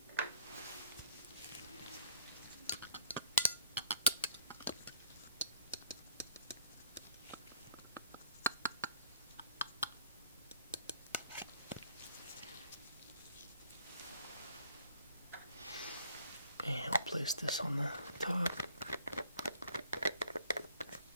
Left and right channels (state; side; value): inverted; both; correlation -0.58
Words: And I'll place this on the top.